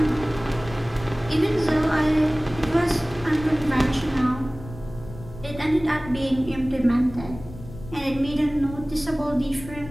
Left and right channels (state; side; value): noise; left; rumble, 15 dB below the sound